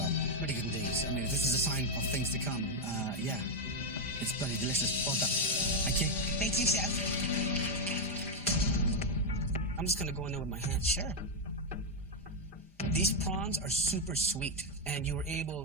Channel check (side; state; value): both; normal; correlation 0.02